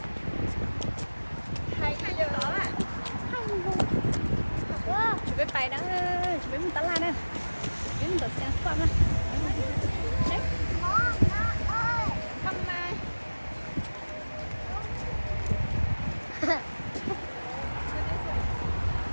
Hay giờ đó à. Chuẩn bị bài đó, chuẩn bị một tala nè. Chuẩn bị một sáng qua nè. Đấy. Không mà.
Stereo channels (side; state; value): both; inverted; correlation -1.00